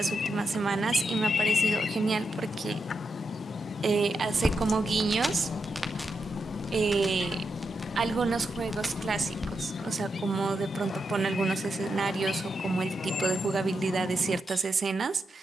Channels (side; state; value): both; normal; correlation 0.85